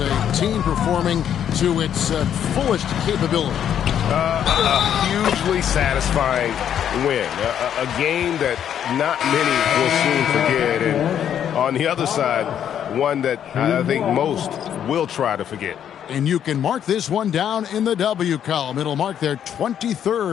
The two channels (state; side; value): quieter; right; 9.4 dB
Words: team performing to its fullest capability. A hugely satisfying win. A game that not many will soon forget. And on the other side, one that I think most will try to forget. And you can mark this one down in the W column. It'll mark their